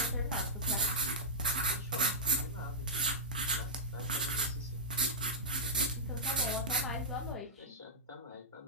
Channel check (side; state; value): both; normal; correlation -0.09